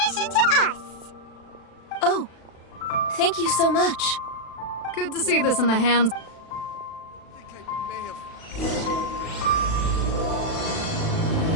commission to us! Oh, thank you so much. Good to see this in the hands...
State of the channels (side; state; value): right; late; 36 ms